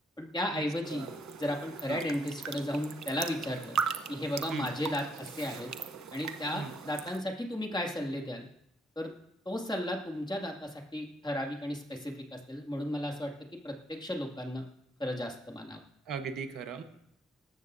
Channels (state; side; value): normal; both; correlation 0.72